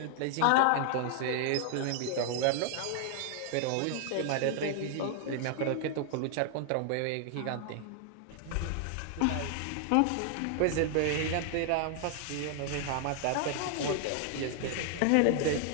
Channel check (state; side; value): different; both; correlation 0.00